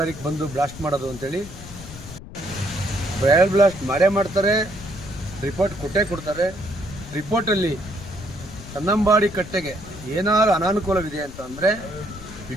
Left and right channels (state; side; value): noise; left; rumble, 14 dB below the sound